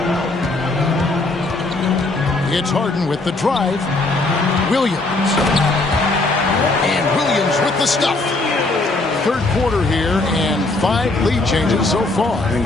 It's Harden with the drive. Williams. And Williams with the stuff. Third quarter here and 5 lead changes so far. And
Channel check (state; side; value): quieter; right; 3.1 dB